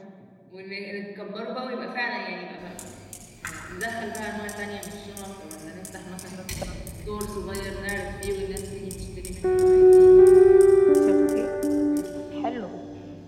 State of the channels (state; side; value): identical; both; correlation 1.00